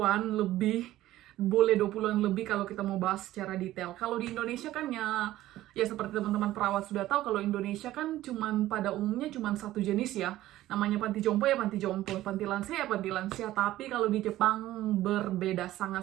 lebih, kalau kita mau bahas secara detail. Kalau di Indonesia kan ya seperti teman-teman perawat sudah tahu, kalau Indonesia kan pada umumnya cuman satu jenis ya, namanya panti jompo ya panti jompo, panti lansia ya panti lansia. Tapi kalau di Jepang berbeda,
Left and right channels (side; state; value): left; quieter; 15.0 dB